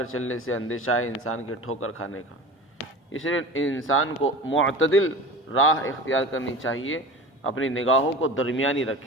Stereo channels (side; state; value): both; normal; correlation 0.34